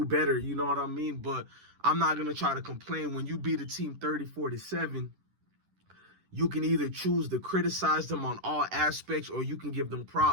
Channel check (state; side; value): late; left; 10 ms